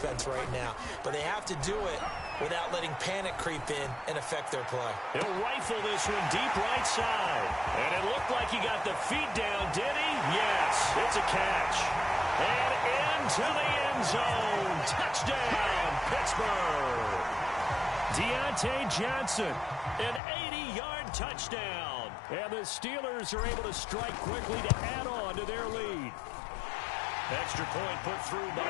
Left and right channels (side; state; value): right; drops out; at 20.2 s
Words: right now. But they have to do it without letting panic creep in and affect their play. He'll rifle this one deep right side. And it looked like he got the feet down, did he? Yes, it's a catch. And into the end zone. Touchdown, Pittsburgh. Deontay Johnson, an 80-yard touchdown. And the Steelers are able to strike quickly to add on to their lead. Extra point put through by